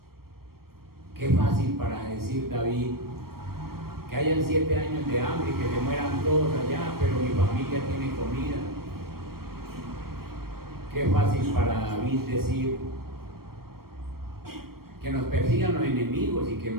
Qué fácil para decir David: que hayan 7 años de hambre y que se mueran todos allá, pero mi familia tiene comida. Qué fácil para David decir: que nos persigan los enemigos y que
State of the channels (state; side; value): late; left; 0.94 ms